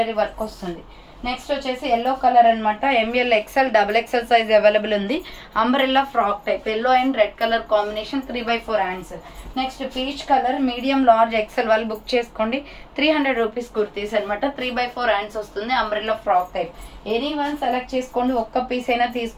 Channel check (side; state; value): both; identical; correlation 1.00